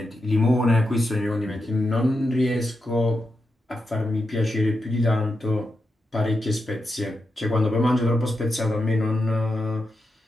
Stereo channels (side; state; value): both; normal; correlation 0.87